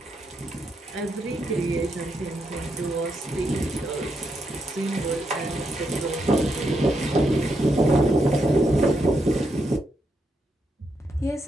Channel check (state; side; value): normal; both; correlation 0.81